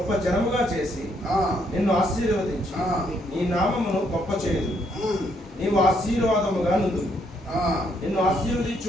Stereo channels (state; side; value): normal; both; correlation 0.72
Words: జనముగా చేసి నిన్ను ఆశీర్వదించి నీ నామమును గొప్ప చేయదు. నీవు ఆశీర్వాదముగా నుండు. నిన్ను